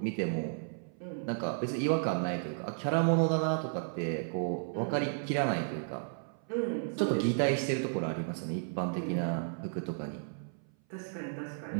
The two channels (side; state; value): left; silent; 55 dB below the other